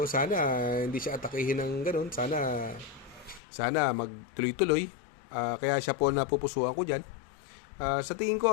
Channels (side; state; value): right; drops out; at 3.4 s